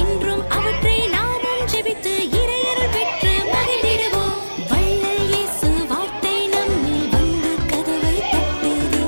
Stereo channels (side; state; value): both; inverted; correlation -1.00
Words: என்றும் அவற்றை நாமும் ஜெபித்து இறையருள் பெற்று மகிழ்ந்திடுவோம். வள்ளல் இயேசு வார்த்தை நம்மில் வந்து கதவை தட்டுதே.